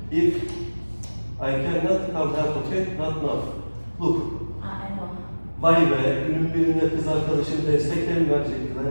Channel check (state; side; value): inverted; both; correlation -1.00